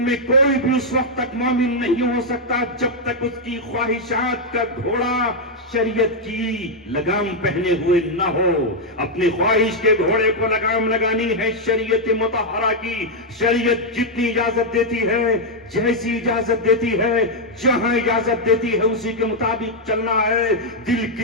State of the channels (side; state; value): both; normal; correlation -0.02